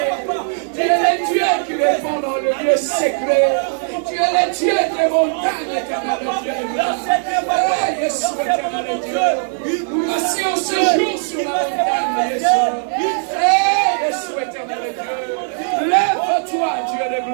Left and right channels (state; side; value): silent; left; 64 dB below the other